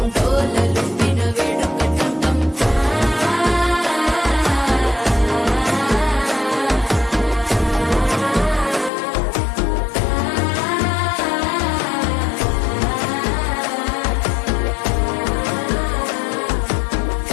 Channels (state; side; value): drops out; right; at 8.9 s